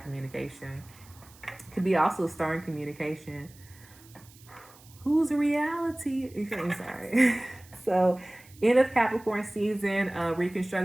Could be also stern communication. Whose reality? I'm sorry. So, end of Capricorn season,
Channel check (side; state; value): right; noise; hiss, 24 dB below the sound